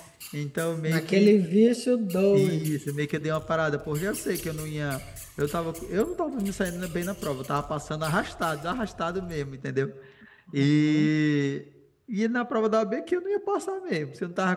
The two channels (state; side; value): identical; both; correlation 1.00